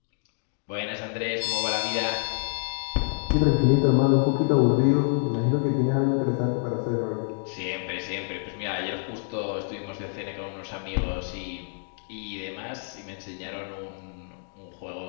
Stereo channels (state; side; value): silent; right; 60 dB below the other